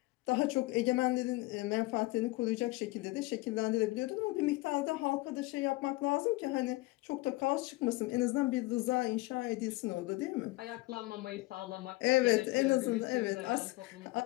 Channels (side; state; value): right; quieter; 21.0 dB